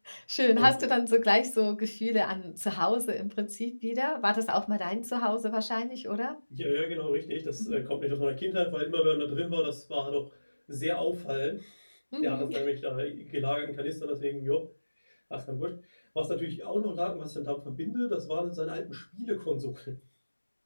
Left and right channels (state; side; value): inverted; both; correlation -1.00